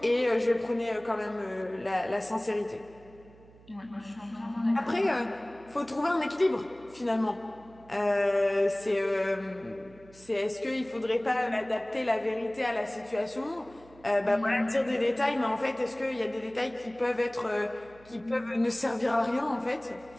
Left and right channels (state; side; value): noise; right; hum, 24 dB below the sound